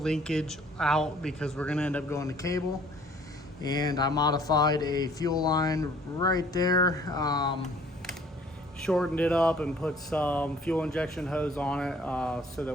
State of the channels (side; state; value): both; normal; correlation 0.56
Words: linkage out because we're gonna end up going to cable, and I modified a fuel line right there, shortened it up and put some fuel injection hose on it so that